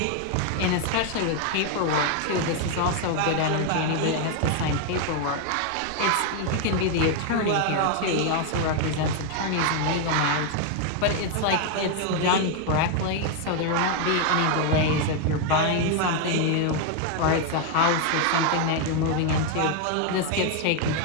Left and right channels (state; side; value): different; both; correlation 0.01